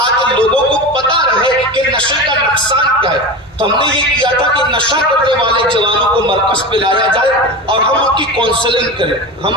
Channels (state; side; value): normal; both; correlation 0.26